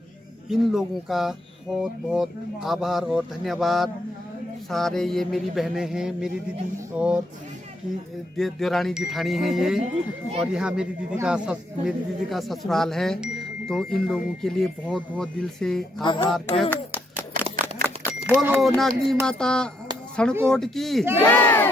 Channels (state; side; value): normal; both; correlation 0.75